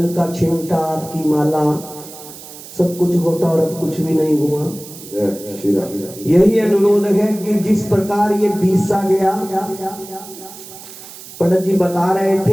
का छिमटा, आपकी माला, सब कुछ होता और अब कुछ भी नहीं हुआ। यही अनुरोध है कि जिस प्रकार ये बीसा गया, पंडित जी बता रहे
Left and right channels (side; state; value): right; noise; hiss, 16 dB below the sound